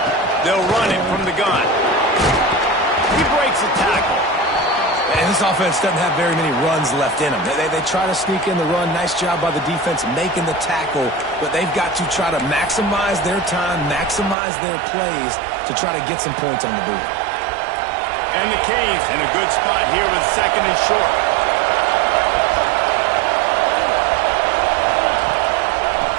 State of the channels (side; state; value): left; drops out; at 14.4 s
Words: They'll run it from the gun. He breaks a tackle. And this offense doesn't have very many runs left in them. They try to sneak in the run. Nice job by the defense making the tackle. But they've got to try to maximize their time, maximize their plays to try to get some points on the board. And the Canes in a good spot here with 2nd and short.